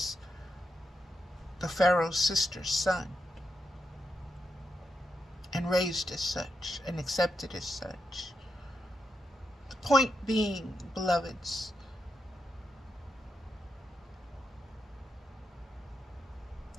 the Pharaoh's sister's son and raised as such and accepted as such. The point being, beloveds,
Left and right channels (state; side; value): normal; both; correlation 0.85